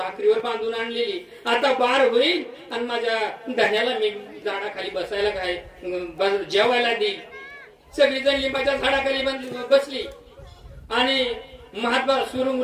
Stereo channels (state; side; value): identical; both; correlation 1.00